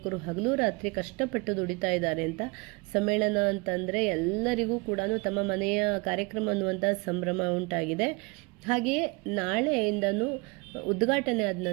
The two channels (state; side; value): quieter; left; 28.5 dB